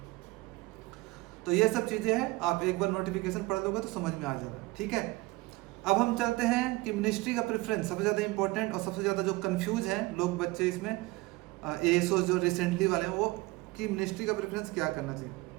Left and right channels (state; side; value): quieter; left; 22.2 dB